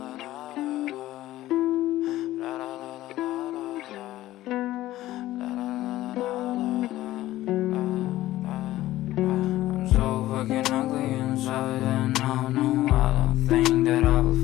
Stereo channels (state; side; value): quieter; right; 15.4 dB